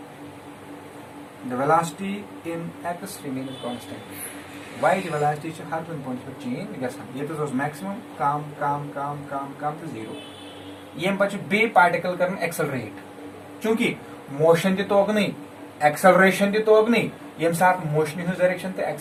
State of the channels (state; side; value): identical; both; correlation 1.00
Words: the velocity in x remains constant y the velocity is हर point पर change गसन ये तो maximum काम to 0 ये बच्चे बे पार्टिकल करन एक्सेलरेट क्योंकि मोशन तो होग नहीं एक्सेलरेशन तो होग नहीं यम साथ मोशन इन डायरेक्शन तो